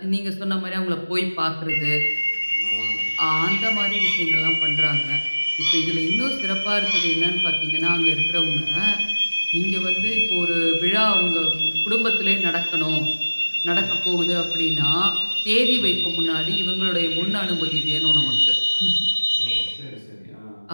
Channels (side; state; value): both; inverted; correlation -1.00